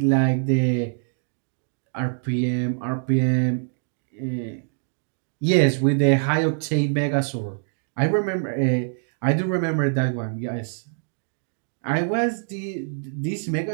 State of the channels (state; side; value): silent; left; digital silence